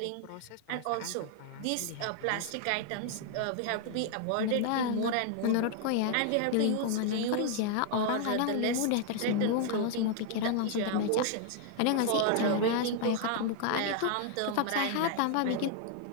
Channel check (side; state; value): both; different; correlation 0.00